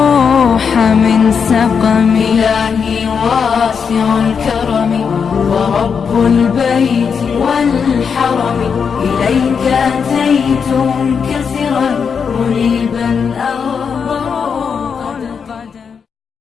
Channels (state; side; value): quieter; right; 6.3 dB